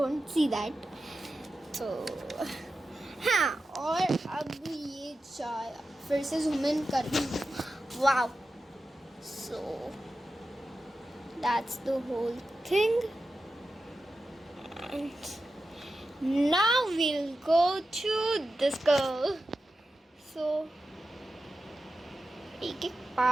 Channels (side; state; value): both; normal; correlation 0.92